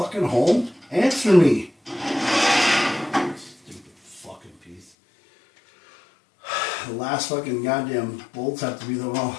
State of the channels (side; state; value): right; drops out; at 4.9 s